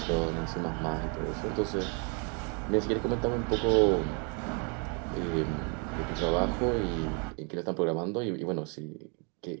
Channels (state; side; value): quieter; left; 36.5 dB